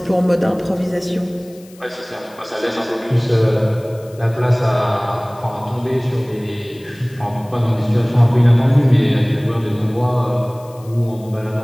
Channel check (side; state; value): left; noise; hiss, 26 dB below the sound